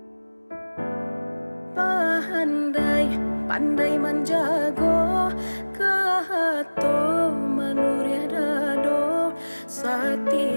Pandai menjago kehato manuria dado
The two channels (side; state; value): both; inverted; correlation -1.00